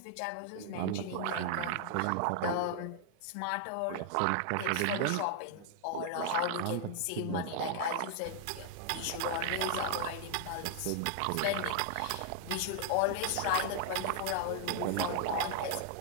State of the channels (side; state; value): both; different; correlation 0.00